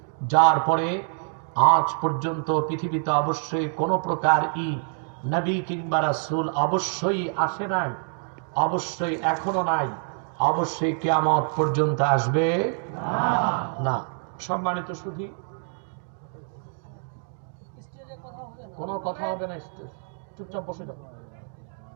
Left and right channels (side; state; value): left; silent; 57 dB below the other